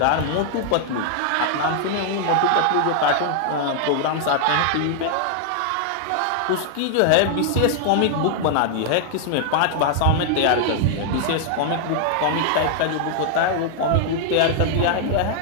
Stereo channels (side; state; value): both; different; correlation 0.00